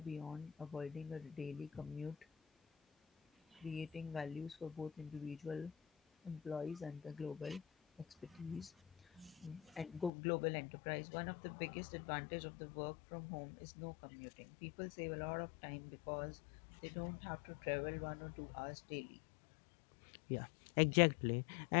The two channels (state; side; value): drops out; right; at 10.1 s